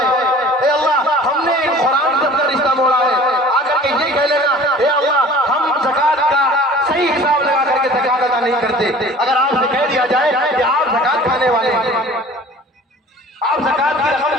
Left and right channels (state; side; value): normal; both; correlation 0.45